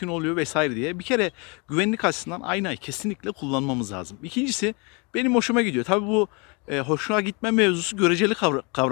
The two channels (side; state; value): right; quieter; 31.4 dB